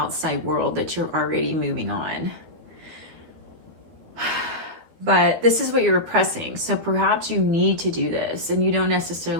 world that you're already moving on. But this is what you're repressing. So perhaps you need to do this, and you don't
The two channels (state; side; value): late; left; 13 ms